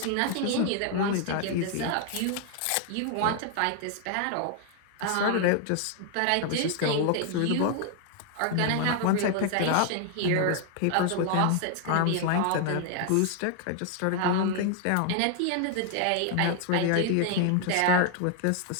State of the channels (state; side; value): different; both; correlation 0.00